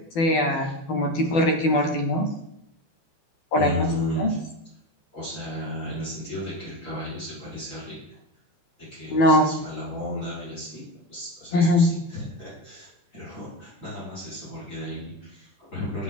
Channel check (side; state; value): right; late; 12 ms